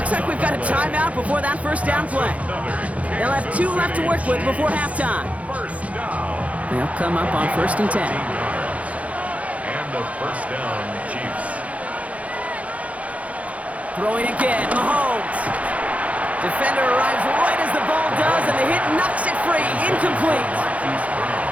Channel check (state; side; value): late; left; 0.066 ms